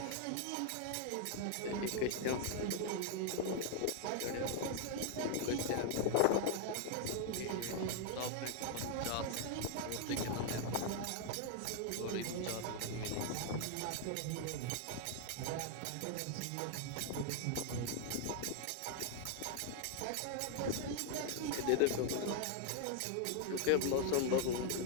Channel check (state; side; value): different; both; correlation 0.00